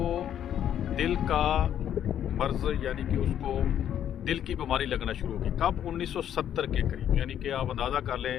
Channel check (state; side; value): quieter; right; 10.1 dB